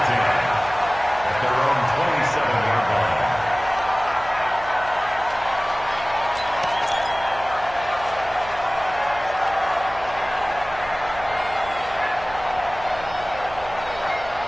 At their own 27-yard line.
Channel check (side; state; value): right; noise; hum, 16 dB below the sound